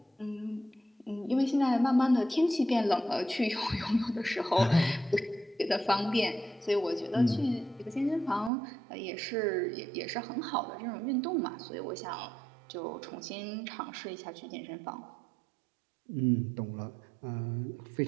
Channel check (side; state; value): left; drops out; at 8.5 s